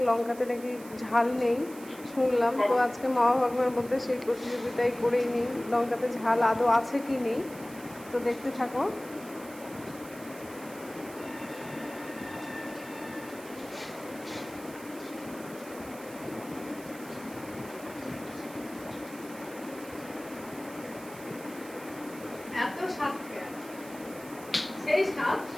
লঙ্কাতে নাকি ঝাল নেই শুনলাম। তো আজকে মা ভগবানের মধ্যে সেই প্রতিযোগিতায় করেই নিই লঙ্কাতে ঝাল আদৌ আছে কি নেই। তো দেখতে থাকো। এত স্বাদ, সেই স্বাদ,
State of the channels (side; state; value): right; noise; hiss, 18 dB below the sound